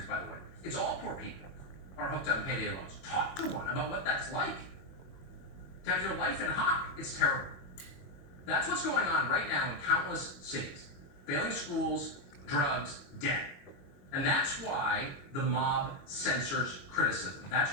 by the way. It's all poor people are hooked on payday loans. Talk to one about what that's like. To have your life in hock, it's terrible. That's what's going on right now in countless cities. Failing schools, drugs, debt. And that's why the mob censors criticism. That's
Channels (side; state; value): right; late; 22 ms